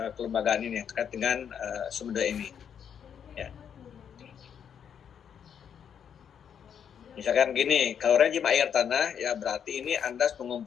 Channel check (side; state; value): right; quieter; 8.1 dB